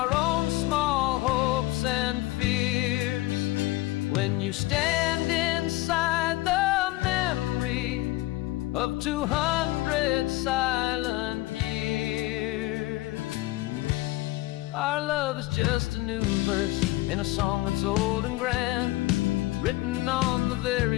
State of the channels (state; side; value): quieter; right; 19.0 dB